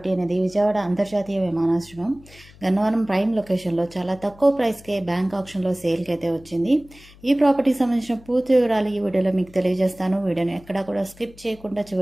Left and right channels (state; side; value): noise; left; hum, 23 dB below the sound